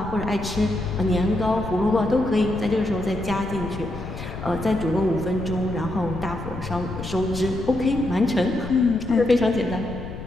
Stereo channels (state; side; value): noise; left; rumble, 10 dB below the sound